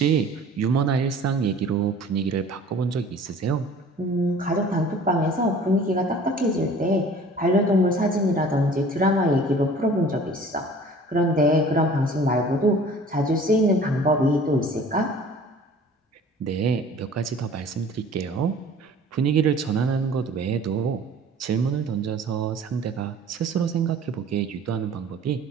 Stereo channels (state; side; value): normal; both; correlation 0.47